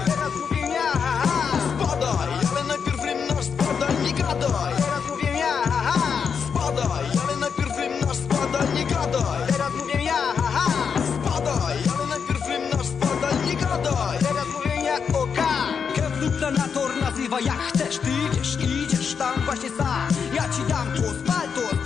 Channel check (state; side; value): quieter; right; 6.5 dB